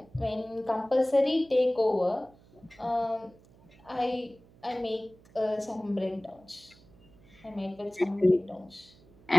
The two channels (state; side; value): noise; right; hum, 26 dB below the sound